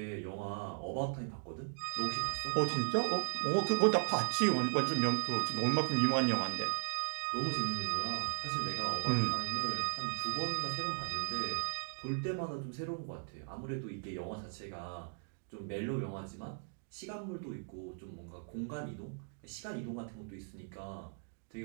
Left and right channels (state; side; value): silent; left; digital silence